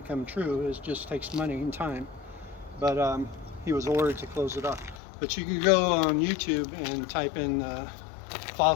true. It just takes money and time. But he was ordered to close it off. But you could go on YouTube and type in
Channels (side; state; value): right; drops out; at 5.0 s